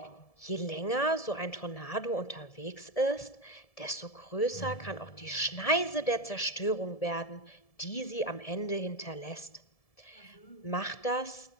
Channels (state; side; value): late; right; 1.7 ms